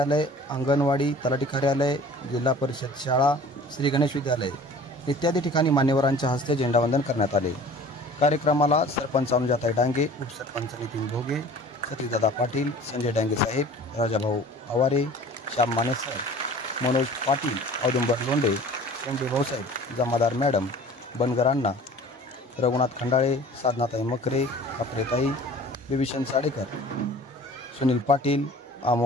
अंगणवाडी, तलाठी कार्यालय, जिल्हा परिषद शाळा, श्री गणेश विद्यालय इत्यादी ठिकाणी मान्यवरांच्या हस्ते झेंडावंदन करण्यात आले। कार्यक्रमाला सरपंच अनुजाताई डांगे, उपसरपंच नितीन भोगे, सतीशदादा पाटील, संजय डांगे साहेब, राजाभाऊ आवारे, श्याम माने सर, मनोज पाटील, औदुंबर लोंढे, शेंडे भाऊसाहेब, जमादार मॅडम, बनगर अण्णा, रघुनाथ खंडाळे, साधनाताई मकरे, कापरेताई, बिभीषण साडेकर, सुनील पाटील,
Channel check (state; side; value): normal; both; correlation 0.45